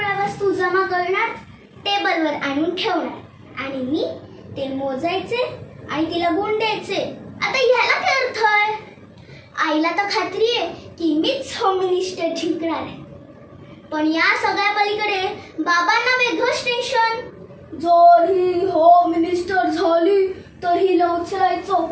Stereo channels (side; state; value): both; identical; correlation 1.00